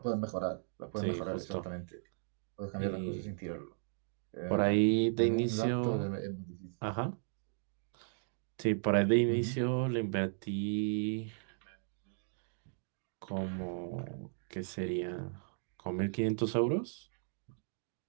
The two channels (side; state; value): left; silent; digital silence